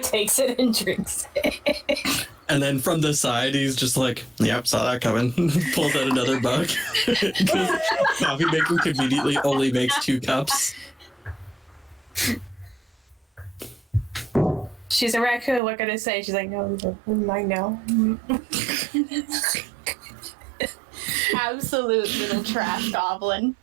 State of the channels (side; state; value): left; drops out; at 15.6 s